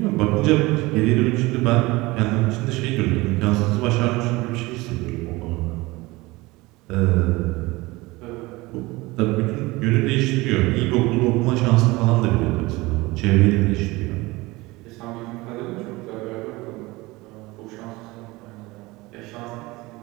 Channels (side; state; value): left; quieter; 21.6 dB